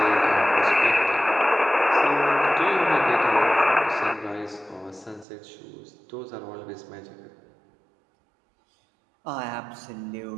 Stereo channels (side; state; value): left; drops out; at 5.2 s